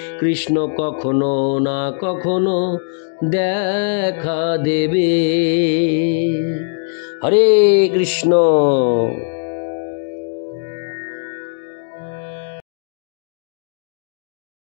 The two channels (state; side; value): silent; right; 65 dB below the other